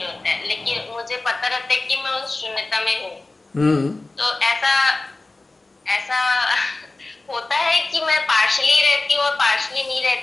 होता है, लेकिन मुझे पता रहता है कि मैं उस शून्यता में हूँ। हम्म। तो ऐसा ऐसा होता है कि मैं पार्शली रहती हूँ और पार्शली नहीं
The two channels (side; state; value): right; quieter; 3.2 dB